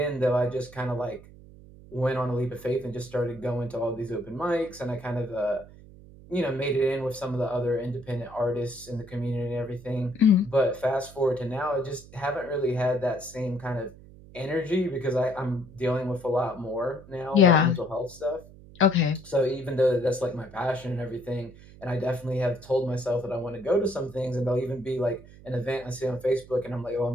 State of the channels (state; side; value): noise; right; hum, 20 dB below the sound